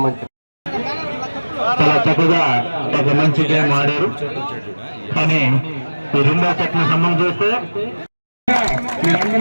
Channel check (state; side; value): inverted; both; correlation -1.00